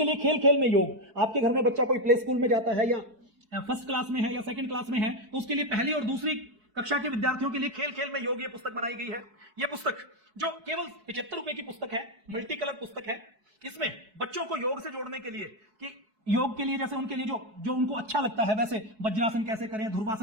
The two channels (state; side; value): late; left; 4.6 ms